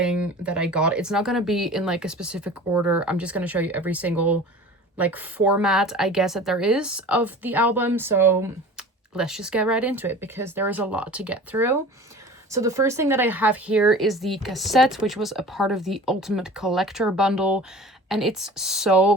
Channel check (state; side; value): normal; both; correlation 0.40